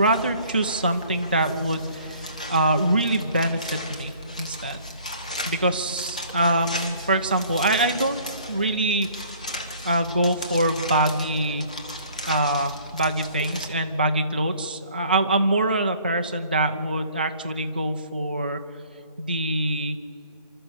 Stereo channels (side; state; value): both; inverted; correlation -0.55